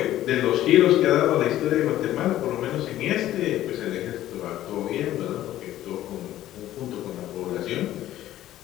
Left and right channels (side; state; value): right; quieter; 13.5 dB